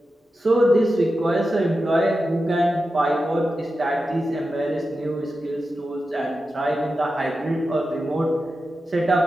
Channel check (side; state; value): both; normal; correlation 0.91